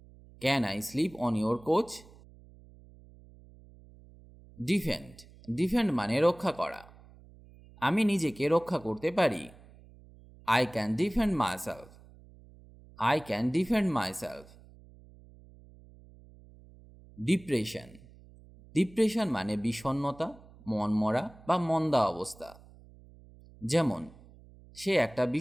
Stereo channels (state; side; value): noise; right; hum, 23 dB below the sound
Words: Can I sleep on your couch? Defend. Defend মানে রক্ষা করা। আমি নিজেকে রক্ষা করতে পারি। I can defend myself. I can defend myself. Depression. Depression মানে বিষণ্ণতা, মনমরা বা মন্দা অবস্থা। যেমন, সে একটা